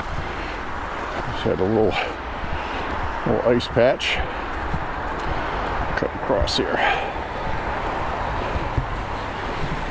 Had a little ice patch cut across here.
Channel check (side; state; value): both; identical; correlation 1.00